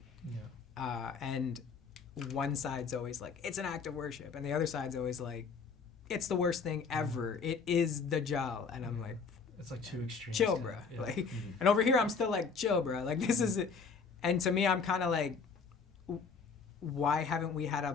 And one side's always like, it's an act of worship. And the other side's always like, it's the worst thing ever. It is Dajjal. And I'm like, it's like two extremes. Chill, bruh. Yeah. Like, and over here, I'm still like, chill, bruh. Like, this is it. And to me, I'm kind of like, why haven't we had a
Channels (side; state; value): right; quieter; 5.3 dB